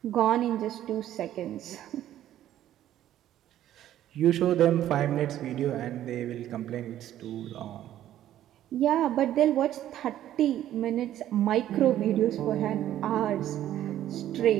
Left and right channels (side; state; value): left; quieter; 12.3 dB